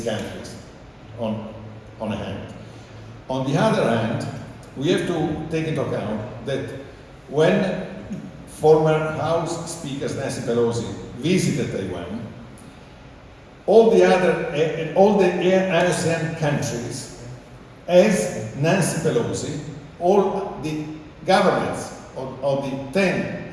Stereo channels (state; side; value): identical; both; correlation 1.00